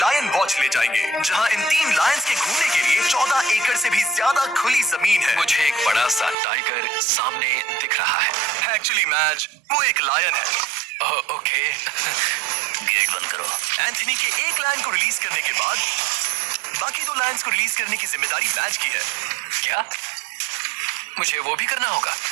वॉच ले जाएंगे, जहां इन 3 लायंस के घूमने के लिए 14 एकड़ से भी ज्यादा खुली जमीन है। मुझे एक बड़ा सा टाइगर सामने दिख रहा है। एक्चुअली मैच वो एक लायन है। ओके। गेट बंद करो। एंथनी के एक लायन को रिलीज करने के बाद बाकी 2 लायंस को रिलीज करने की जिम्मेदारी मैच की है। क्या मुझे वो भी करना होगा?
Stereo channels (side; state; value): left; drops out; at 6.4 s